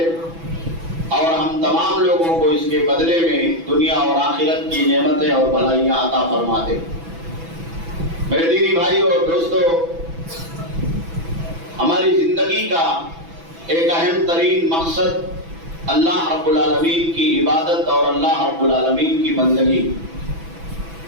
اور ہم تمام لوگوں کو اس کے بدلے میں دنیا اور آخرت کی نعمتیں اور بھلائیاں عطا فرما دے۔ میرے دینی بھائی اور دوستو، ہماری زندگی کا ایک اہم ترین مقصد اللہ رب العالمین کی عبادت اور اللہ رب العالمین کی بندگی،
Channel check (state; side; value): late; left; 6.0 ms